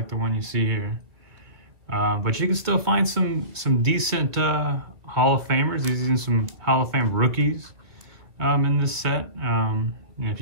the one you see here. But you can still find some decent Hall of Famers. Even some Hall of Fame rookies in this set. And if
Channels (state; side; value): late; left; 2.5 ms